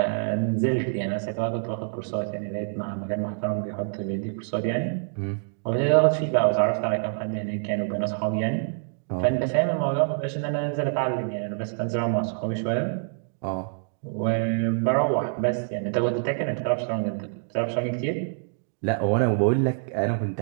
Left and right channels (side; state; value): left; silent; digital silence